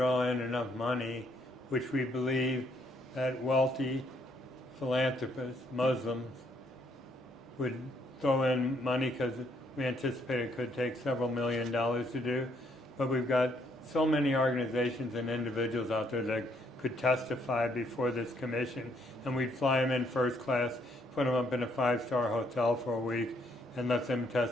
in enough money, which we believe that wealthy philanthropists, Muslims, would throw in money because we anticipate it could take several $1 million to do. But we've got so many organizations and individuals out there that could testify before this commission, and we'd fly them in first class, put them up in a 5-star hotel for a week, and let them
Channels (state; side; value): normal; both; correlation 0.70